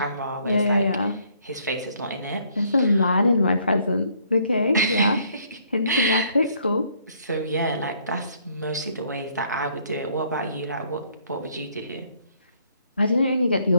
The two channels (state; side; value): inverted; both; correlation -0.66